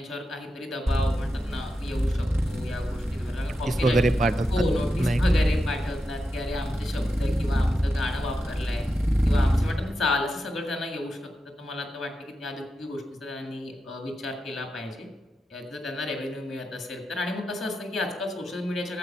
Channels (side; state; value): both; normal; correlation 0.88